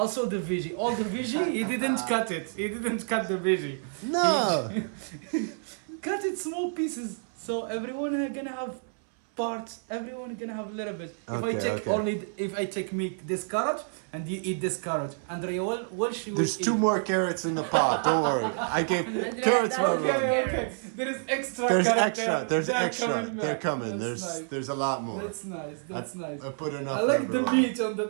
the veggie. All the veggie, he didn't cut it. He didn't cut the veggie. No. Cut it small pieces. So everyone gonna have parts. Everyone gonna have a little bit. If I Okay, take okay. if I take meat, this carrot, and you eat this carrot. Andrea, what she will There's eat? two more carrots in the pot. Don't worry. I gave carrots for Rumi. Okay. There is extra There's carrot extra. there. There's They're extra. coming They're back. coming. That's nice. There's a lot more. That's nice. That's nice. I put enough. I like for the everyone. meat on the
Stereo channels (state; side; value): silent; left; 59 dB below the other